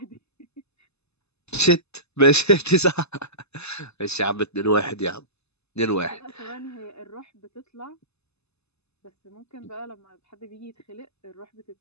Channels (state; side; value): late; right; 0.80 ms